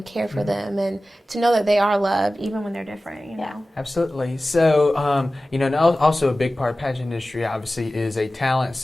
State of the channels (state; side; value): normal; both; correlation 0.96